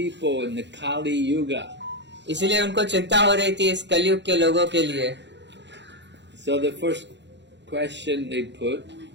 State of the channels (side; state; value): left; late; 0.52 ms